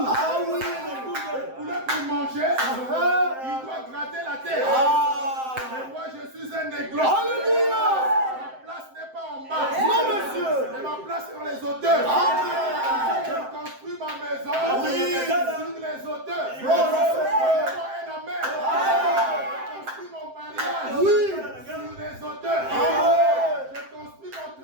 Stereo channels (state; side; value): late; left; 7.7 ms